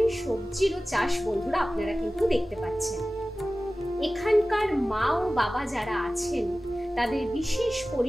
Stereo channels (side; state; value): both; normal; correlation 0.96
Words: সবজিরও চাষ বন্ধুরা আপনারা কিন্তু দেখতে পাচ্ছেন। এখানকার মা ও বাবা যারা আছেন তাদের বিশেষ